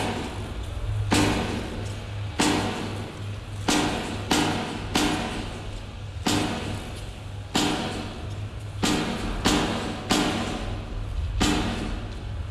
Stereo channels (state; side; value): identical; both; correlation 1.00